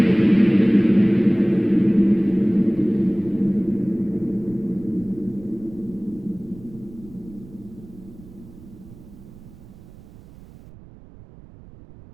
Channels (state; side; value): noise; right; rumble, 20 dB below the sound